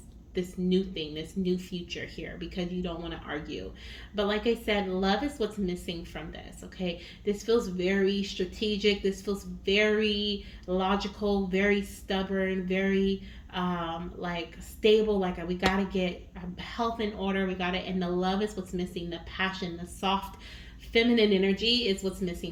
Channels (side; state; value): both; identical; correlation 1.00